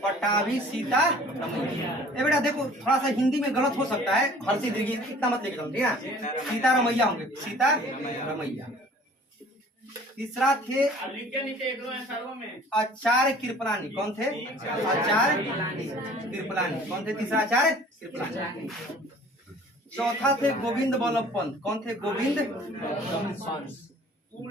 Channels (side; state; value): both; normal; correlation 0.50